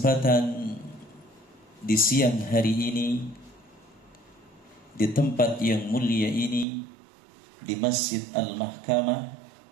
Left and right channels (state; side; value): drops out; left; at 6.7 s